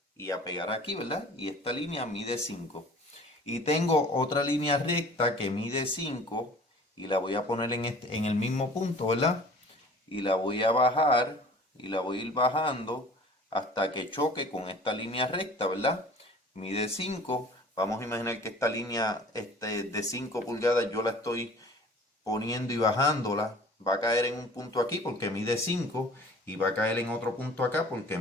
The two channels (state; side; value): normal; both; correlation 0.47